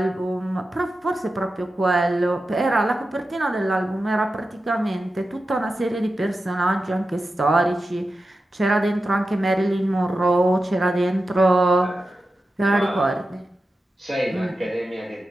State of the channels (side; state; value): both; normal; correlation 0.92